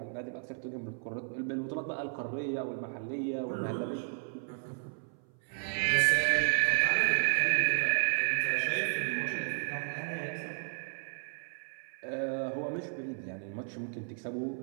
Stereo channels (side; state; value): left; silent; 56 dB below the other